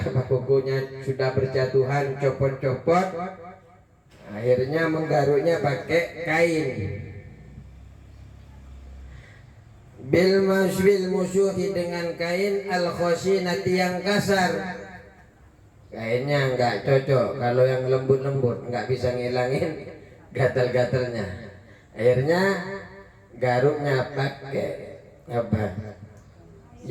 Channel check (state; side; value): identical; both; correlation 1.00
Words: kukunya sudah berjatuhan, copot-copot, akhirnya menggaruknya pakai kain. Bil musyuhi, dengan kain al khoshinati, yang kasar. Kainnya enggak cocok, kalau yang lembut-lembut enggak bisa ngilangin gatal-gatalnya. Akhirnya garuknya pakai apa?